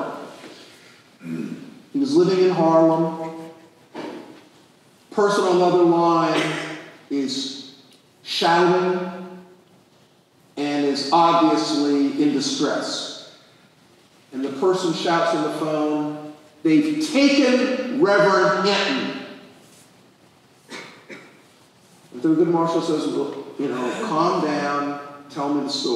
He was living in Harlem. Person on the other line is shouting and is obviously in distress. And the person shouts on the phone, "They've taken Reverend Hinton." And Thurgood Marshall says, "Well, calm down, tell me the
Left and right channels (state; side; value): identical; both; correlation 1.00